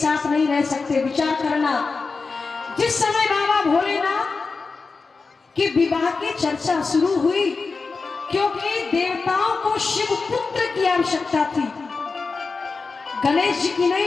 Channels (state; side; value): quieter; right; 4.3 dB